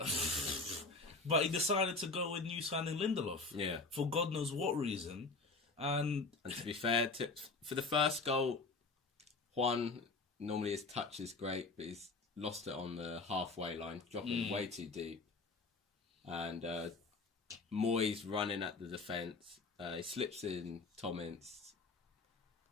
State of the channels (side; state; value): right; quieter; 3.8 dB